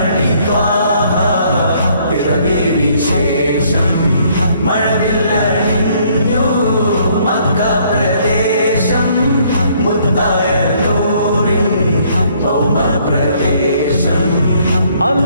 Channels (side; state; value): both; inverted; correlation -0.64